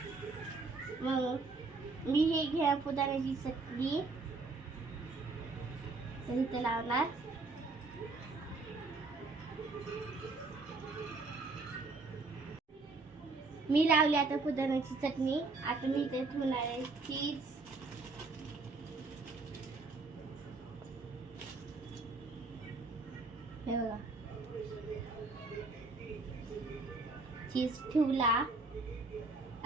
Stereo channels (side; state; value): left; quieter; 3.6 dB